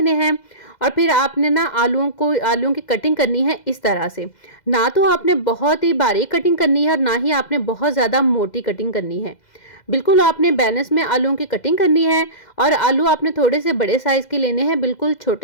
हैं और फिर आपने ना आलूओं की कटिंग करनी है इस तरह से। ना तो आपने बहुत ही बारीक कटिंग करनी है और ना ही आपने बहुत ज़्यादा मोटी कटिंग करनी है। बिल्कुल आपने बैलेंस में आलूओं की कटिंग करनी है और आलू आपने थोड़े से बड़े साइज़ के लेने हैं, बिल्कुल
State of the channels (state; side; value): late; right; 2.0 ms